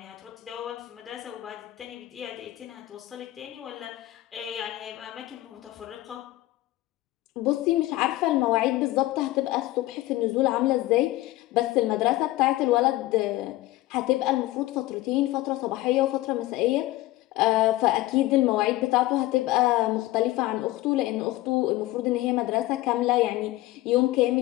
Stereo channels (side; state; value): right; quieter; 17.4 dB